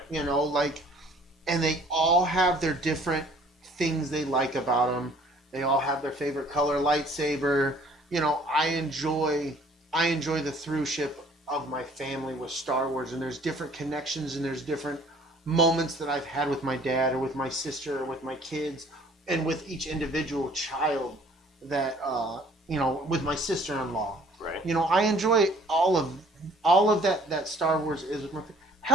And they all have their different things they like about them. They all have their favorite color lightsaber. I enjoy the throughship of my family with Star Wars, and there's different connections and there's different moments that I've had with my dad or with my sister or with my kids and with each individual child that with my sister-in-law. Right. I enjoy all of that Star Wars is with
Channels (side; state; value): both; normal; correlation 0.55